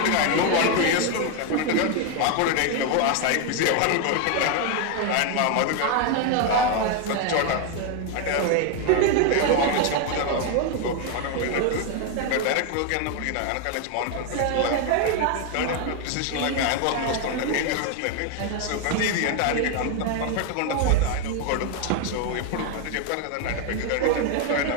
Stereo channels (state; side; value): different; both; correlation 0.01